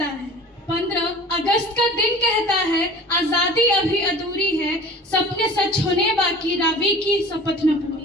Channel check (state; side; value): normal; both; correlation 0.42